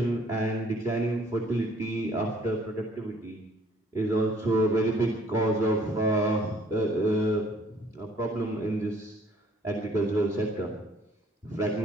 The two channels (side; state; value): both; normal; correlation 0.59